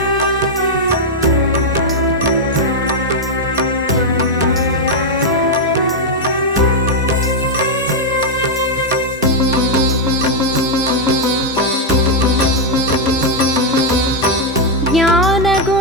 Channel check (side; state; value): both; normal; correlation -0.01